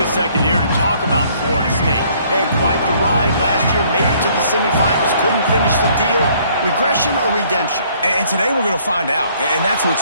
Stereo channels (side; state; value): both; inverted; correlation -0.62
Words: second here to talk about Florida State. They had quite the ride last year, made it to the semifinals, couldn't finish the deal. Regression or redemption? And today we're going to find out, and that's